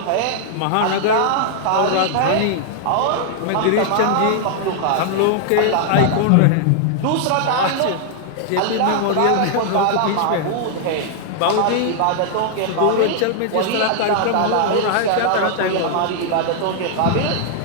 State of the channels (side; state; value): both; different; correlation -0.01